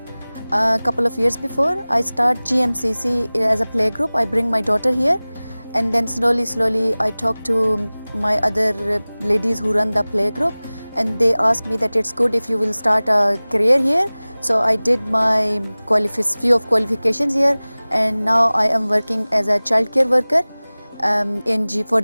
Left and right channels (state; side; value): inverted; both; correlation -0.99